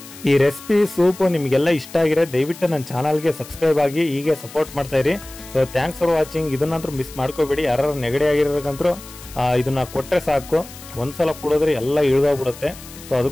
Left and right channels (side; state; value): left; noise; hiss, 17 dB below the sound